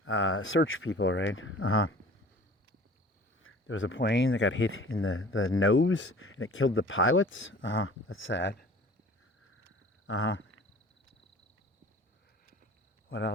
search people, right? There was a plane that got hit in the nose and it killed the pilots. That's sad. What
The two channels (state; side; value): normal; both; correlation 0.46